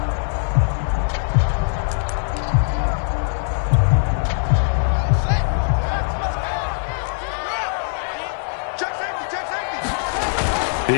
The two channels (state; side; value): silent; right; 63 dB below the other